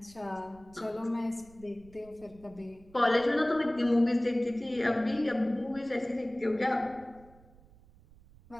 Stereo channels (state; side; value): noise; right; rumble, 24 dB below the sound